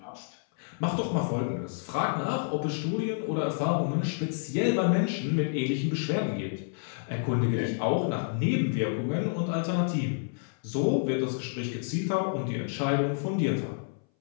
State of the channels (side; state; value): right; silent; 58 dB below the other